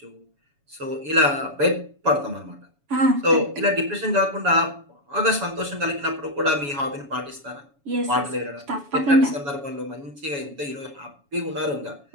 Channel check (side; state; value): left; late; 7.1 ms